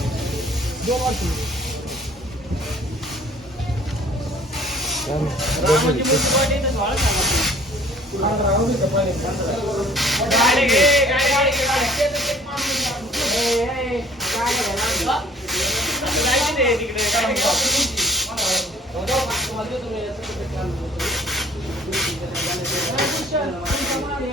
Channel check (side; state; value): both; normal; correlation 0.53